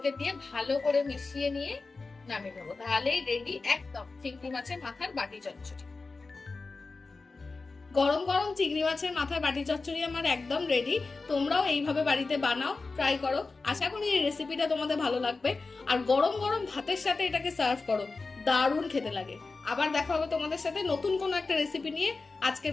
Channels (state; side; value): quieter; right; 3.9 dB